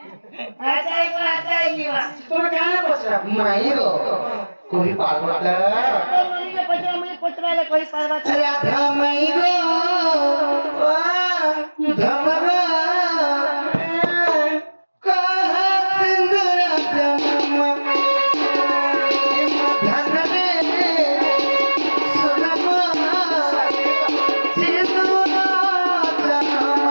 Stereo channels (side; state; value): both; inverted; correlation -1.00